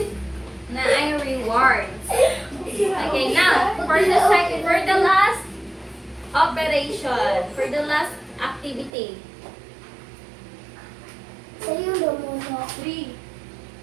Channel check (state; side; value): drops out; left; at 8.9 s